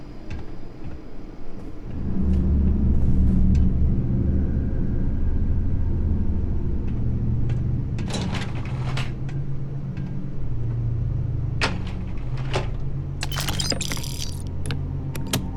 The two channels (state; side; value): identical; both; correlation 1.00